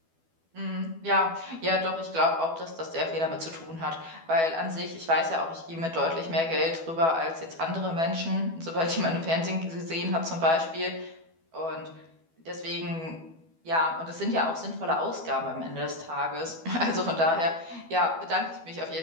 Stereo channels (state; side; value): late; left; 12 ms